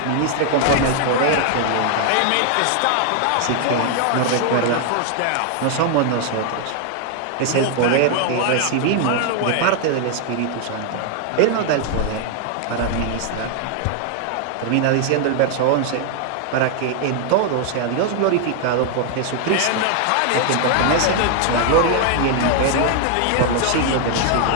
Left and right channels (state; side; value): different; both; correlation 0.00